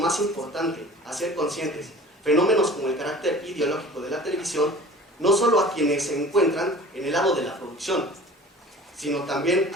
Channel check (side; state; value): both; normal; correlation 0.44